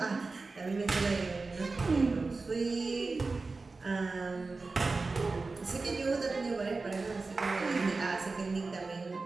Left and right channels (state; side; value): quieter; left; 3.8 dB